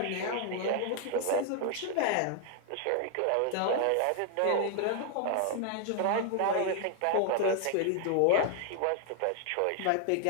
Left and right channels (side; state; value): both; different; correlation 0.00